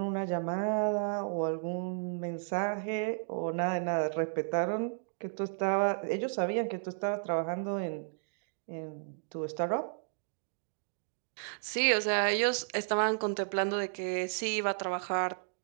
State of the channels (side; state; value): left; silent; digital silence